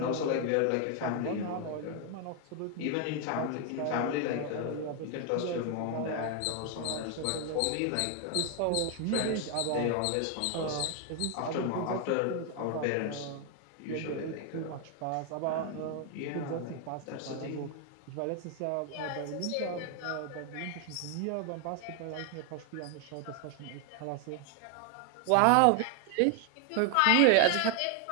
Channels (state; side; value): different; both; correlation 0.01